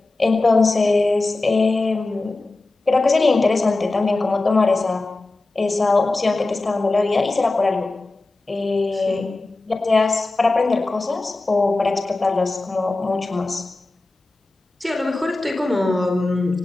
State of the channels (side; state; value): right; quieter; 3.1 dB